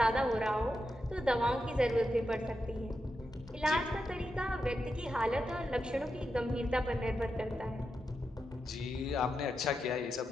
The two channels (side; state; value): both; normal; correlation 0.87